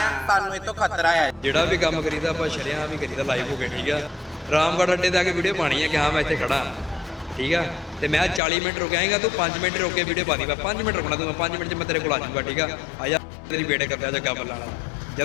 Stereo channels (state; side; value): drops out; right; at 8.4 s